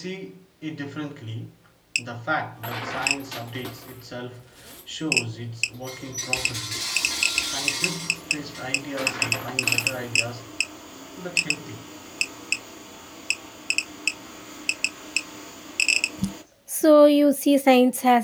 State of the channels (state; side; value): identical; both; correlation 1.00